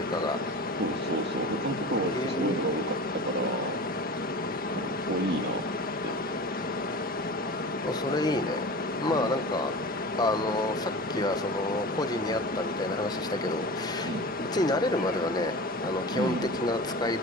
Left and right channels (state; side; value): normal; both; correlation 0.33